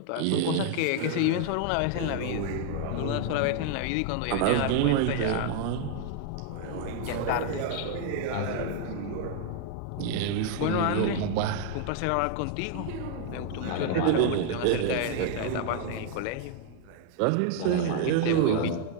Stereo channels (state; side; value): different; both; correlation 0.00